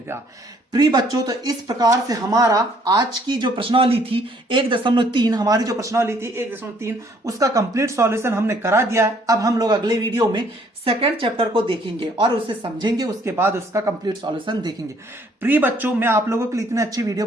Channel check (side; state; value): both; normal; correlation 0.63